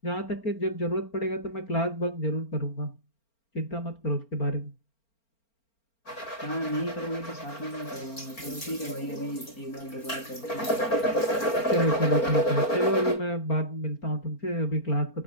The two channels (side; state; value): right; late; 4.4 ms